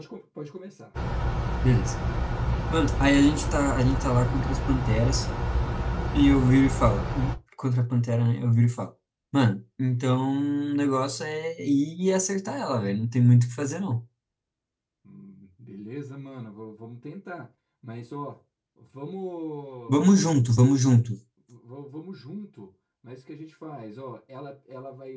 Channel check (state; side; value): identical; both; correlation 1.00